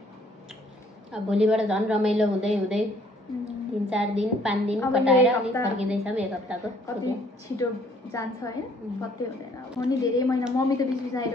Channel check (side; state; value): both; normal; correlation 0.61